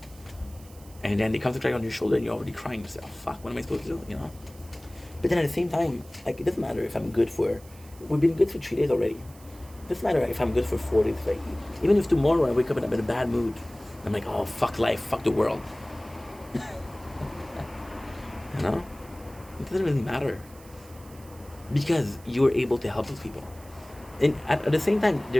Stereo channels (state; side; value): noise; right; hiss, 23 dB below the sound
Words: And then they come to cry on your shoulder and you're already crying yourself. Fuck, what am I supposed to do, But then at the same time, like, it doesn't matter if we've been good for 3 days already. It doesn't matter if I'm good for 4 days. Like, even if tomorrow I wake up and I'm in a bad mood, I'm like, oh, fuck life, fuck the world. It doesn't really matter. Because you're able to help those people. And at the same time,